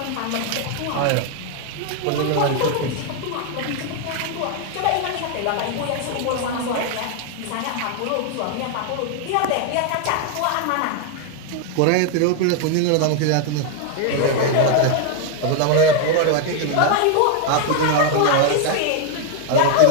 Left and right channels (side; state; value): both; different; correlation 0.00